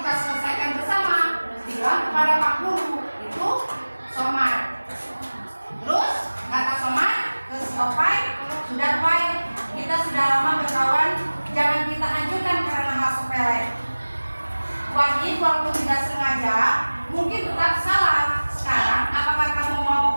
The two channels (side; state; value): both; inverted; correlation -1.00